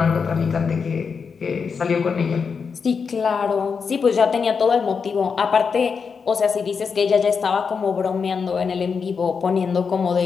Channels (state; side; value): quieter; right; 5.7 dB